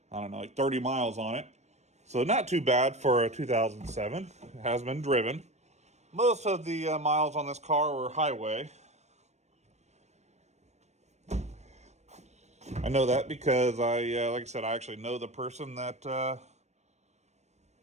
I don't know, like 30 miles on it. So not too bad for a 2007. It has been driven. Most of the miles on this car were highway. I know that because like I said, I actually know the person that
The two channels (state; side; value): late; left; 0.32 ms